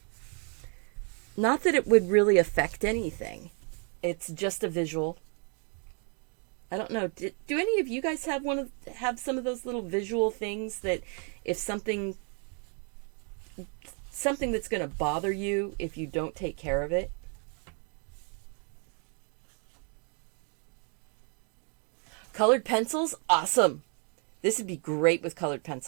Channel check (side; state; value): left; quieter; 39.4 dB